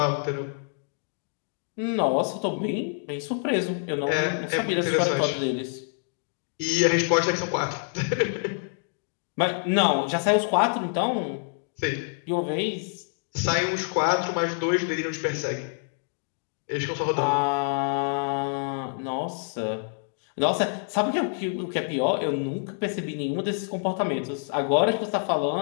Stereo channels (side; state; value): right; silent; digital silence